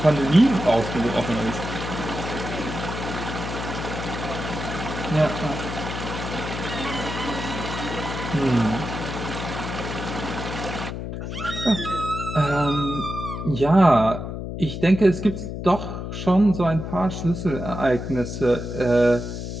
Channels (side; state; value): left; noise; hum, 6 dB below the sound